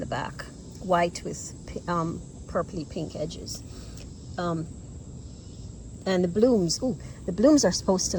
back. White with purpley pink edges. And the blooms, ooh, the blooms are supposed to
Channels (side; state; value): both; identical; correlation 1.00